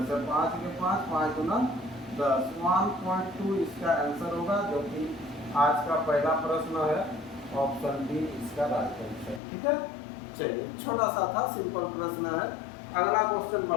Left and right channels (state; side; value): drops out; right; at 9.4 s